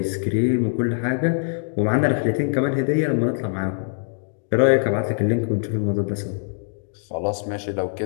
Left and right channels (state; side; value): silent; right; digital silence